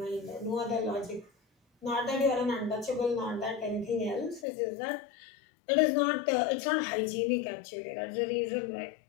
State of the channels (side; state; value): right; drops out; at 4.5 s